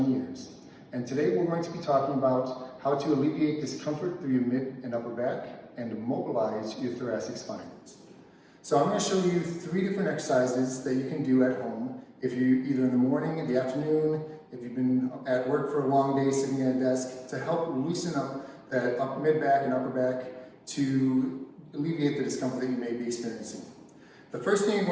years, and today we're going to be talking about how to alleviate discomfort through your mid and upper back and mobilize your thoracic spine. So I'm going to show you 3 different exercises that you can do at home if you either in the morning, in the afternoon, if you've been at work for a long day sitting at a desk, to help loosen up that mid back and upper back to alleviate the discomfort that you may be experiencing. The first thing you're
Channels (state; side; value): identical; both; correlation 1.00